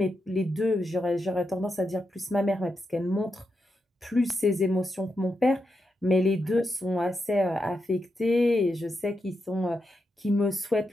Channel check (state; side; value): normal; both; correlation 0.85